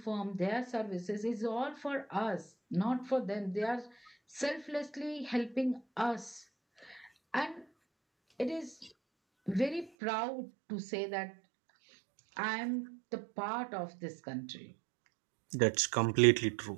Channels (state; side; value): drops out; left; at 9.9 s